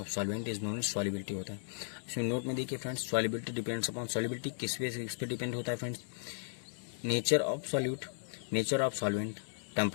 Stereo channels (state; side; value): silent; right; digital silence